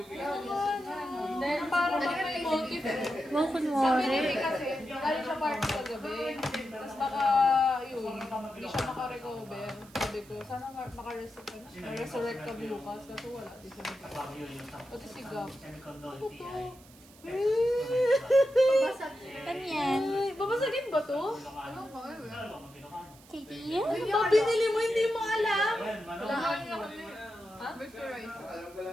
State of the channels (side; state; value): right; noise; hiss, 24 dB below the sound